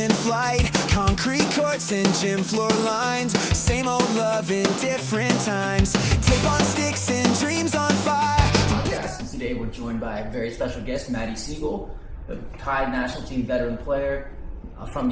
flight, concrete courts and gym floor lines, same old love in different times, tape on sticks and dreams on fire. Today we're joined by a very special guest, Matty Sigel, a Thai national team veteran player from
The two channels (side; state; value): both; identical; correlation 1.00